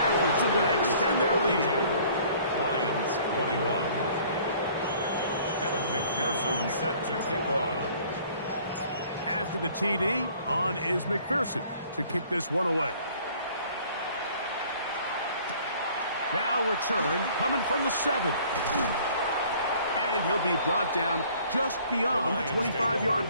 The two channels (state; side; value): inverted; both; correlation -0.55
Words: are going to extend their lead. Lions 21. Evan McPherson set to kick off. After the TD, on is McPherson to kick this one away. Now return coming from the 7. And he'll be brought down just beyond the 25-yard